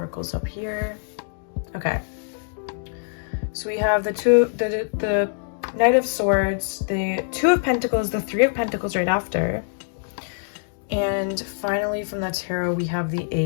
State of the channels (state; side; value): silent; right; digital silence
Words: up here. Okay. So we have the Knight of Swords, the Two of Pentacles, the Three of Pentacles right after. And finally from the tarot, we have the